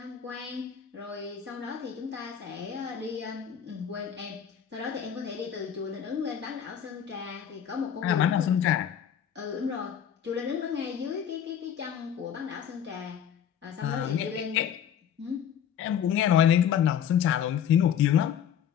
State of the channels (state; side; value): quieter; right; 9.0 dB